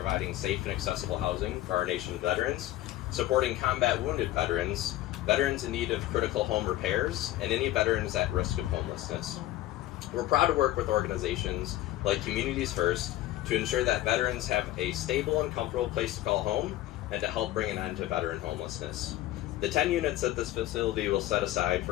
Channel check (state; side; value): quieter; right; 15.0 dB